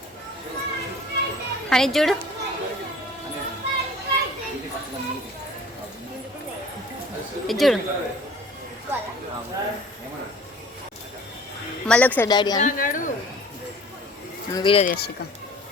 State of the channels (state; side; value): normal; both; correlation 0.47